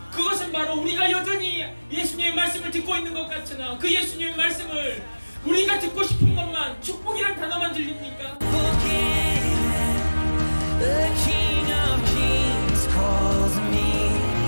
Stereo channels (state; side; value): inverted; both; correlation -1.00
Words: 그것은 바로 우리가 여전히 예수님의 말씀을 듣고 있는 것 같으나 그 예수님의 말씀을